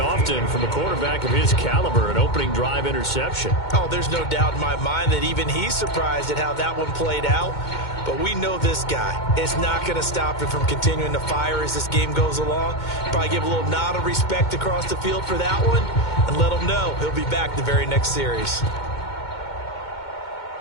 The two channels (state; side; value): late; right; 2.2 ms